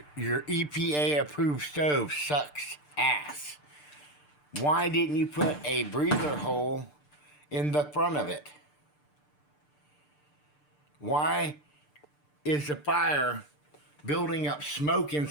EPA approved stove sucks ass. Why didn't you put a breather hole in the front of it? Why is the fire building up smoke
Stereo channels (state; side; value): late; right; 6.7 ms